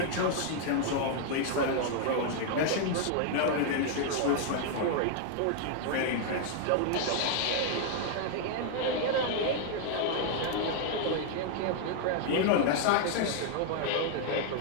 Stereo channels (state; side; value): different; both; correlation 0.00